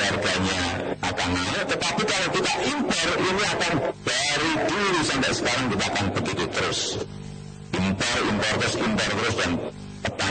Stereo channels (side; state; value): both; identical; correlation 1.00